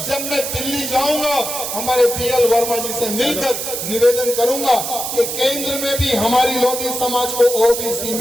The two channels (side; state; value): right; noise; hiss, 4 dB below the sound